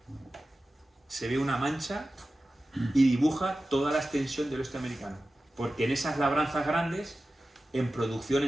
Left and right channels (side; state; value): both; normal; correlation 0.95